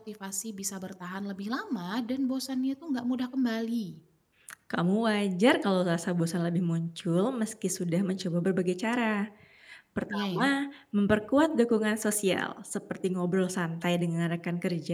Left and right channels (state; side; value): identical; both; correlation 1.00